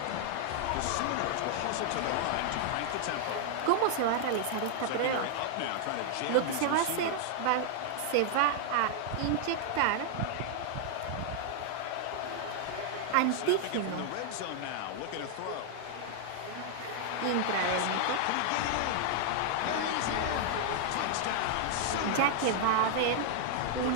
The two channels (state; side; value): different; both; correlation 0.00